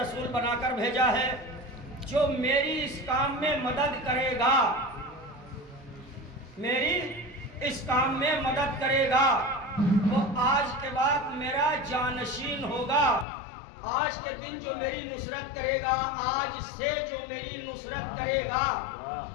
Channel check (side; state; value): right; drops out; at 13.2 s